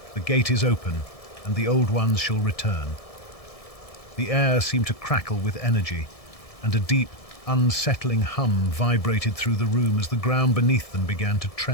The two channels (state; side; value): late; right; 1.7 ms